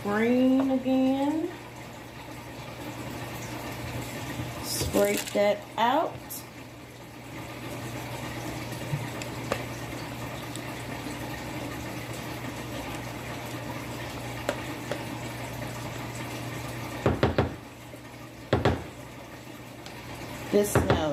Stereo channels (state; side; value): identical; both; correlation 1.00